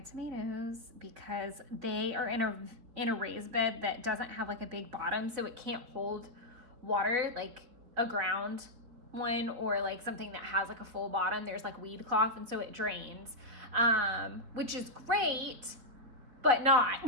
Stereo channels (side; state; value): left; late; 4.3 ms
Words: because they are in a raised bed that doesn't have like a big bottom, so it can't hold water like a ground one or like something that has like a full bottom. There's like weed cloth, and so it drains, which is great, but not